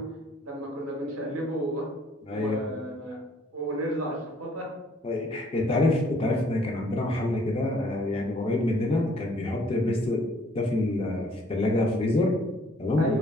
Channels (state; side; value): normal; both; correlation 0.61